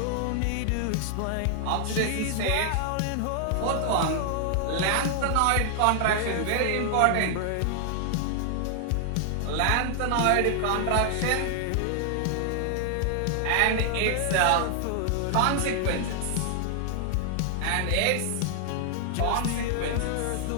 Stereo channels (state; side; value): different; both; correlation 0.00